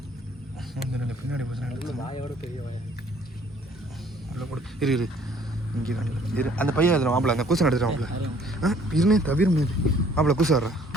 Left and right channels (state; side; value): normal; both; correlation 0.59